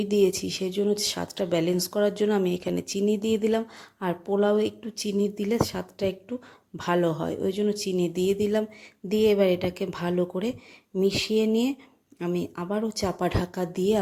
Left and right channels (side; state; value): both; identical; correlation 1.00